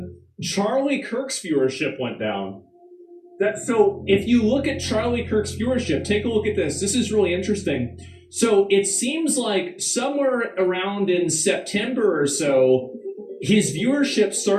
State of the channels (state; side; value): identical; both; correlation 1.00